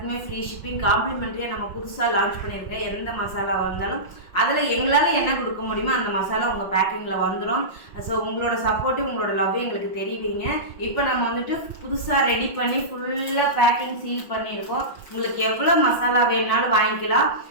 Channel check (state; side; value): late; right; 5.6 ms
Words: ஃப்ரீ ஷிப்பிங், காம்ப்ளிமெண்ட்ரியாக நம்ம புதுசாக லான்ச் பண்ணியிருக்கேன். எந்த மசாலா வந்தாலும் அதில் எங்களால் என்ன கொடுக்க முடியுமோ அந்த மசாலா உங்கள் பேக்கிங்கில் வந்துடும். ஸோ உங்களோட சப்போர்ட்டு, உங்களோட லவ் எங்களுக்கு தெரிவிங்க. இப்போ நம்ம புதுசாக ரெடி பண்ணி ஃபுல்லாக பேக்கிங் சீல் பண்ணியிருக்கோம். உங்களுக்கு எவ்வளோ மசாலா வேணுனாலும் வாங்கிக்கலாம்.